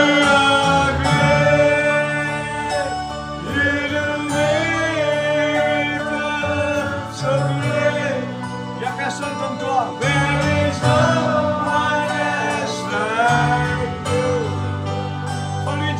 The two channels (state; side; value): identical; both; correlation 1.00